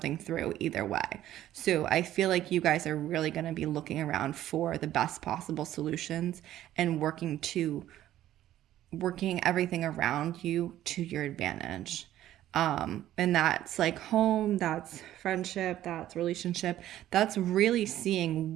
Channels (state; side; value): quieter; left; 13.1 dB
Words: through either way. So I feel like you guys are really going to be looking around for the best possible solutions and working everything around you to your advantage. And that's like home, that's friendship, that's relationship. That's really